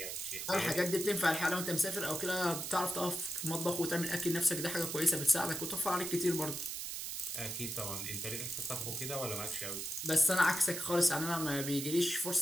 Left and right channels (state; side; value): noise; right; hiss, 5 dB below the sound